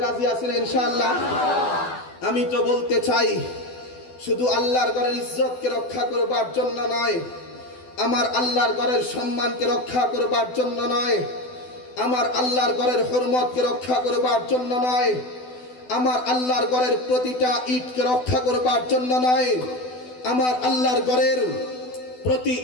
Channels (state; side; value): late; right; 12 ms